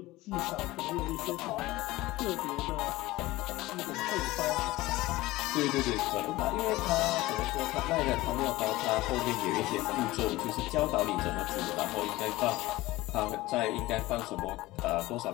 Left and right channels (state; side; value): quieter; right; 18.7 dB